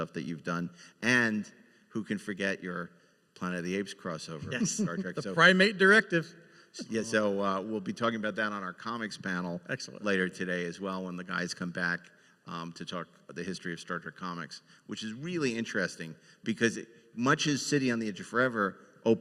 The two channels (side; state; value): both; identical; correlation 1.00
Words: that you've done, and who can forget your Planet of the Apes crossover with Star Trek. The Primate Directive. Yeah, so we'll be talking about that on our comics panel later today as well when the guys come back to talk the history of Star Trek comics, which is really interesting because much as City on the Edge of Forever